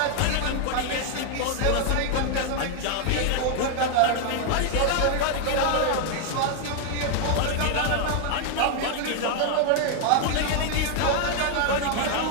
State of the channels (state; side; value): different; both; correlation 0.00